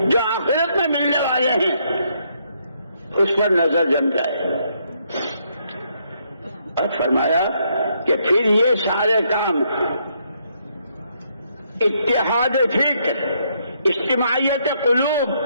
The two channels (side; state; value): both; inverted; correlation -0.73